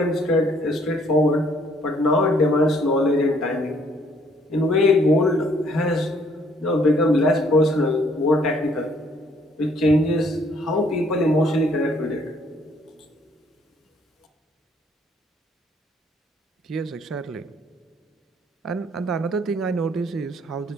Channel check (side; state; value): both; normal; correlation 0.64